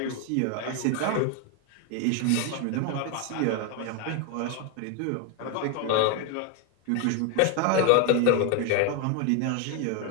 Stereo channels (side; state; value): both; different; correlation 0.01